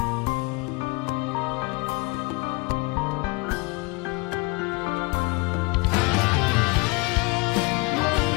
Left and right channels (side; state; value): right; quieter; 27.1 dB